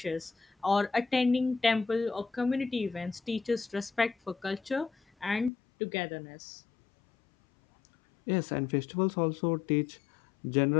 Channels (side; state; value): right; drops out; at 5.5 s